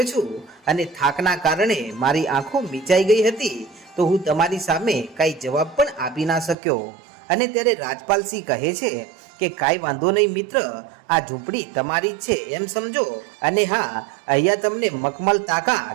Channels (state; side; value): drops out; left; at 6.6 s